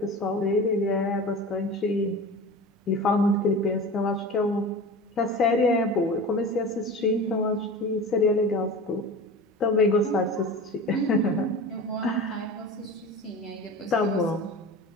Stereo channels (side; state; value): both; normal; correlation 0.34